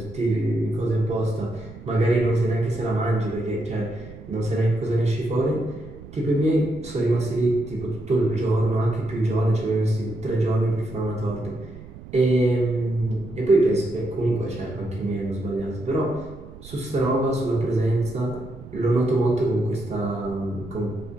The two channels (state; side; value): noise; right; rumble, 16 dB below the sound